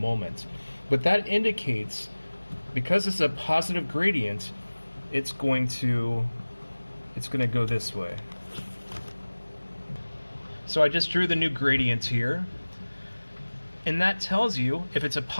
But that indicates, because it's a positive gradient, it's going to go this way. So I just drew the new gradient here. And that tells you, if it's a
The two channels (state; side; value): inverted; both; correlation -1.00